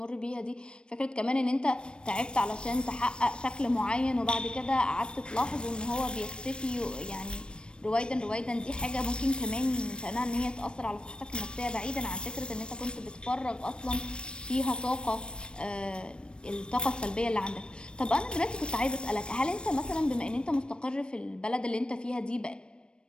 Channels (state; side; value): late; right; 0.054 ms